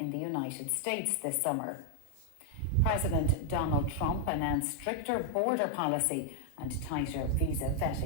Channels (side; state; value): both; different; correlation 0.00